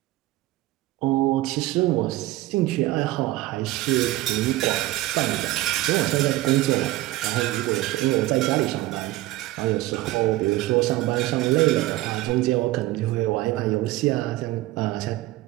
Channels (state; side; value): quieter; left; 17.3 dB